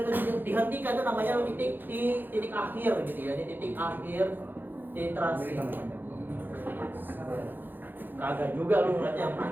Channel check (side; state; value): left; late; 0.092 ms